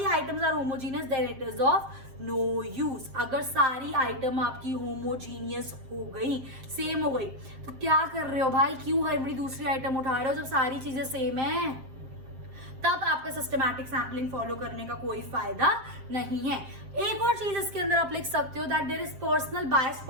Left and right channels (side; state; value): left; late; 7.5 ms